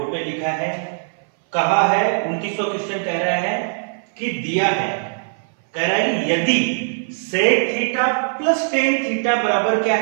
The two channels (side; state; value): left; silent; 60 dB below the other